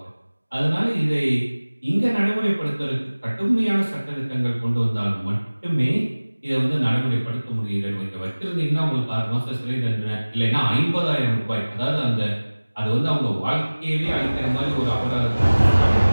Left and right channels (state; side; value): inverted; both; correlation -1.00